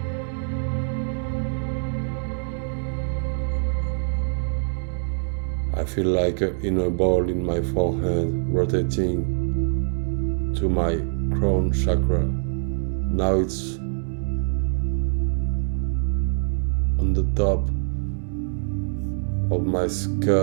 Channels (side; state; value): left; silent; 62 dB below the other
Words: I feel like an inner ball in my forehead rotating to my crown chakra. Now it's on the top of my